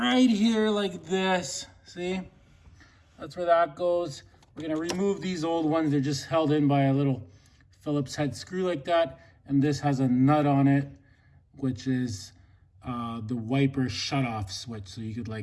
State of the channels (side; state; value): both; identical; correlation 1.00